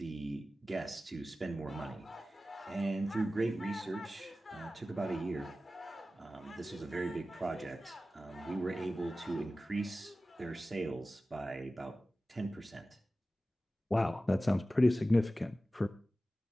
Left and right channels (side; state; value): both; normal; correlation 0.95